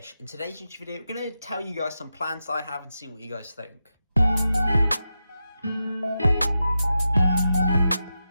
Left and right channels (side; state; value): both; inverted; correlation -0.89